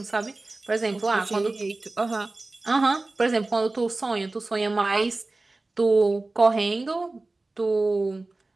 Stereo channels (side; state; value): left; quieter; 3.1 dB